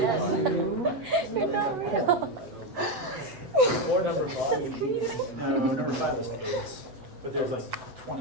you. You're not real. Or number 5. No, number 5 was 8. But there's like 20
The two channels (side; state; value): left; late; 7.9 ms